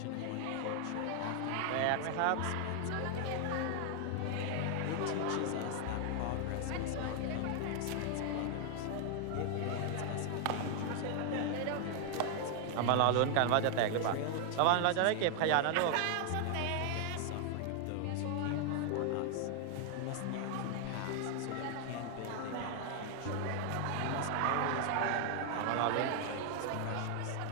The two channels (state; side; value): different; both; correlation 0.00